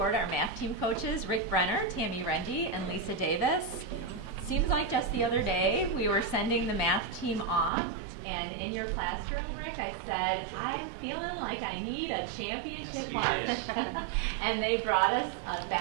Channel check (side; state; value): left; drops out; at 7.7 s